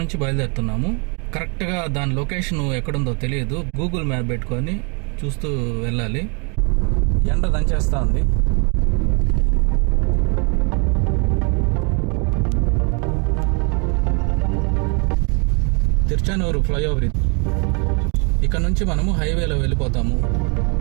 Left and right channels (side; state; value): left; quieter; 35.5 dB